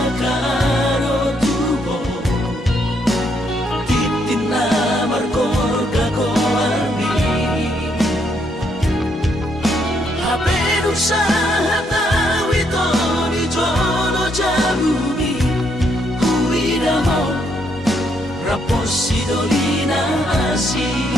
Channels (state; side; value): normal; both; correlation 0.74